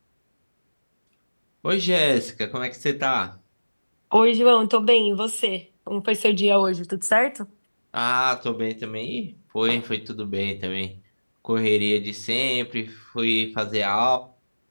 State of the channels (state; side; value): inverted; both; correlation -1.00